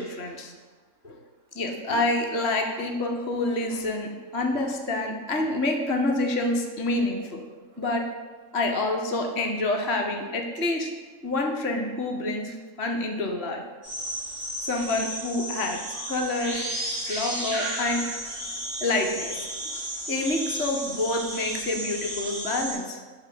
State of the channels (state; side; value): late; left; 3.6 ms